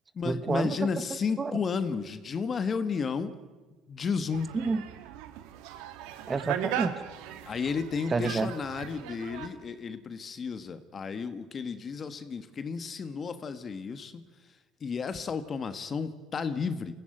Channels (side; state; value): both; normal; correlation 0.76